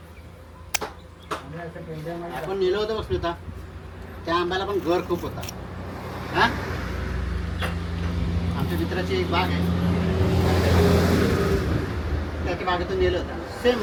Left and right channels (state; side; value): identical; both; correlation 1.00